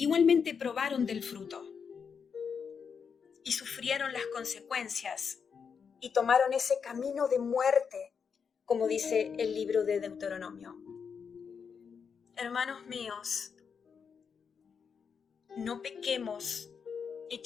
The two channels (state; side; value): quieter; right; 6.3 dB